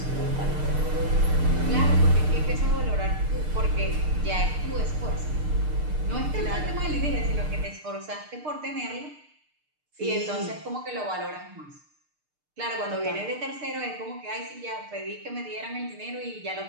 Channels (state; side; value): late; left; 6.6 ms